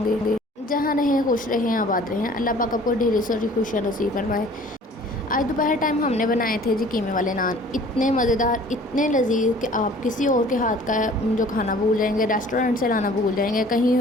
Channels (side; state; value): both; normal; correlation 0.50